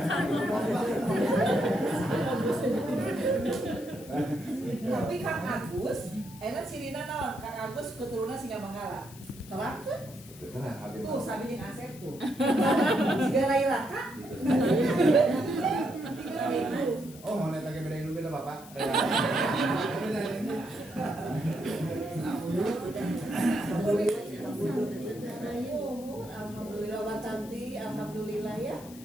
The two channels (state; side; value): noise; left; hiss, 19 dB below the sound